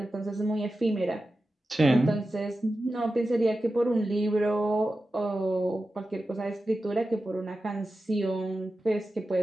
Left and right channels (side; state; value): both; normal; correlation 0.93